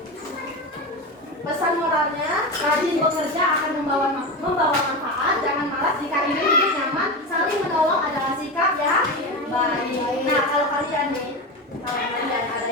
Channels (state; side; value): normal; both; correlation 0.21